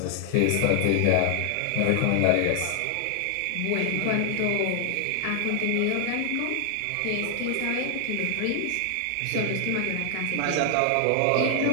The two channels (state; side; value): different; both; correlation 0.00